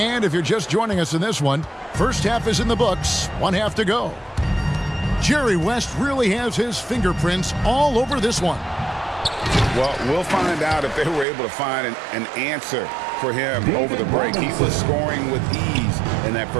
if you're just joining us in this one, first half is in the books, 1 half to go. Jerry West really has his fingerprints all over this one. Well, we'll find out if they were able to find an answer for him over the break. He was scoring with ease in that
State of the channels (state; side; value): drops out; left; at 11.2 s